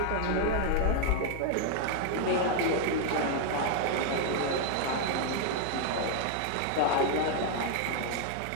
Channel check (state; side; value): different; both; correlation 0.00